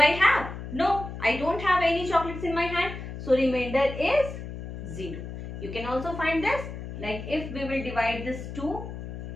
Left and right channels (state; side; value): noise; left; hum, 9 dB below the sound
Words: have? No, I don't have any chocolates in my hand. So remainder is 0. You can also find this, like if we will divide this 2